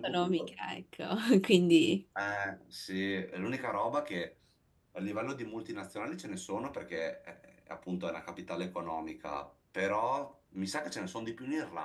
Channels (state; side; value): identical; both; correlation 1.00